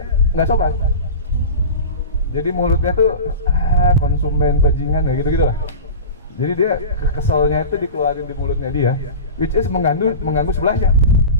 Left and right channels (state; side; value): inverted; both; correlation -0.31